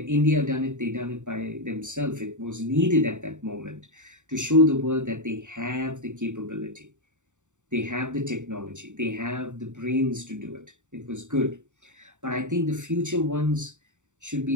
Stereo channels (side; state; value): left; late; 0.85 ms